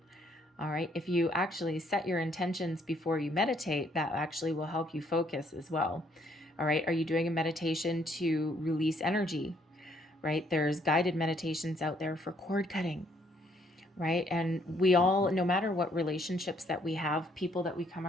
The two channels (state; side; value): normal; both; correlation 0.67